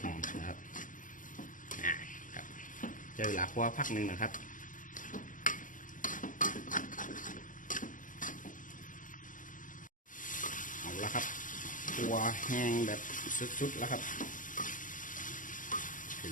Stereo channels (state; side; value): late; right; 0.38 ms